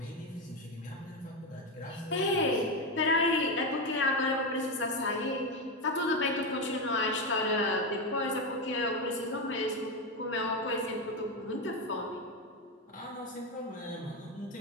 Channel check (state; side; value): normal; both; correlation 0.11